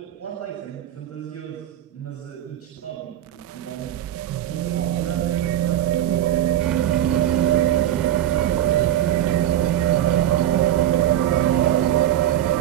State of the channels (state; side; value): quieter; left; 12.0 dB